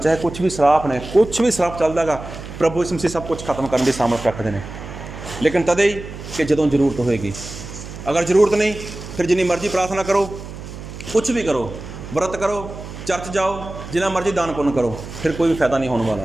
ਕੁਛ ਵੀ ਸਰਾਪ ਨੇ, ਕੁਛ ਵੀ ਸਰਾਪ ਚੱਲਦਾ ਗਾ, ਪ੍ਰਭੂ ਯਿਸੂ ਮਸੀਹ ਸਭ ਕੁਛ ਖਤਮ ਕਰਨ ਦੀ ਸਾਮਰਥ ਰੱਖਦੇ ਨੇ। ਲੇਕਿਨ ਤਦੇ ਹੀ ਕਿ ਜਦੋਂ ਜ਼ਰੂਰਤ ਹੋਏਗੀ। ਅਗਰ ਜ਼ਰੂਰਤ ਨਹੀਂ, ਫਿਰ ਜਿੰਨੀ ਮਰਜ਼ੀ ਪ੍ਰਾਰਥਨਾ ਕਰੋ, ਕੁਛ ਵੀ ਕਰੋ, ਵਰਤ ਕਰੋ, ਚਰਚ ਜਾਓ, ਜਿੰਨਾ ਮਰਜ਼ੀ ਦਾਨ ਪੁੰਨ ਕਰੋ, ਫਿਰ ਕੋਈ ਵੀ ਫਾਇਦਾ ਨਹੀਂ ਹੋਣ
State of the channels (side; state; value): right; noise; hum, 12 dB below the sound